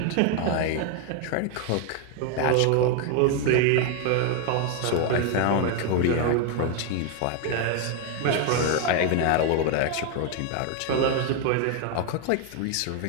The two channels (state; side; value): different; both; correlation 0.01